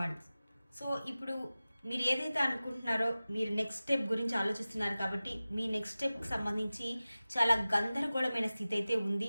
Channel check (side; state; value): both; inverted; correlation -0.97